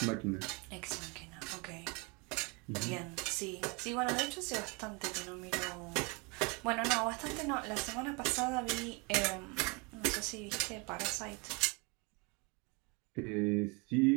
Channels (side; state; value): left; quieter; 29.7 dB